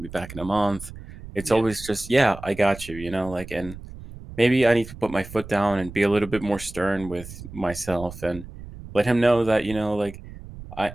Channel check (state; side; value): noise; right; rumble, 14 dB below the sound